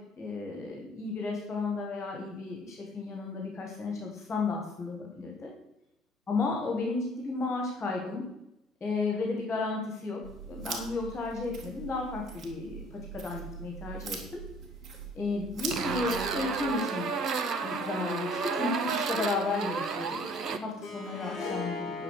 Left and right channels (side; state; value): both; normal; correlation 0.55